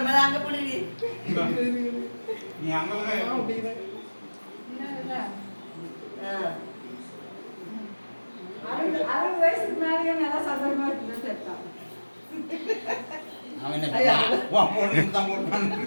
அங்க புடி நீ அங்க வயசுக்கு மேலேயே நல்லா சந்தோஷமா இருக்குன்னு சேர்த்தான் அவன் என்ன போட்டு தான் போட்டு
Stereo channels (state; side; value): inverted; both; correlation -1.00